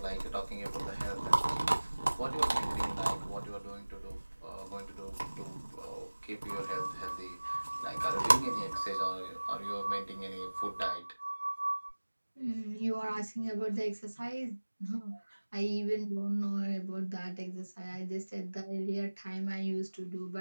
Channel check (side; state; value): both; inverted; correlation -1.00